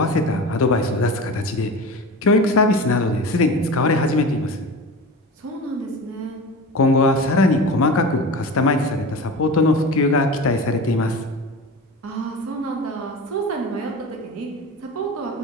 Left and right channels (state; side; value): normal; both; correlation 0.31